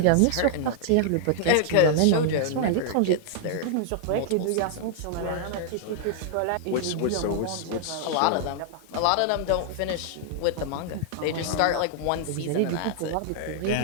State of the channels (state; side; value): different; both; correlation -0.01